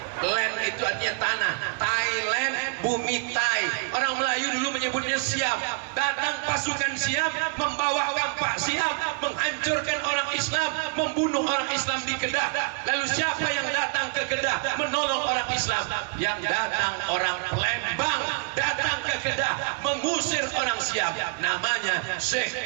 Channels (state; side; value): quieter; left; 34.0 dB